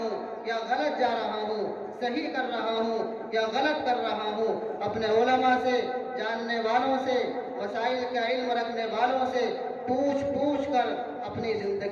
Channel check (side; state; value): both; identical; correlation 1.00